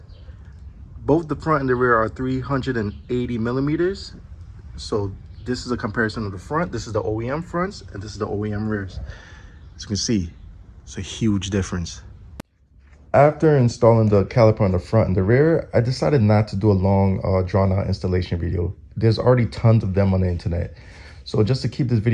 Both the front and the rear are 380 millimeters. So this is a comparison of the front. This is the OEM fronts, and this is the OEM rears. As you can see, it's a huge difference. After installing the caliper on the front and the rear, I decided not to do a long drawn out installation video. There's already tons of them on the internet. So just to keep this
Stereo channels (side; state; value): both; identical; correlation 1.00